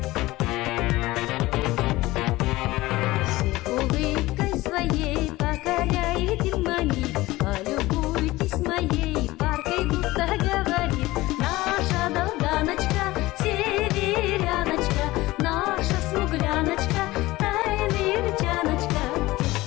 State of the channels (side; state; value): right; quieter; 18.8 dB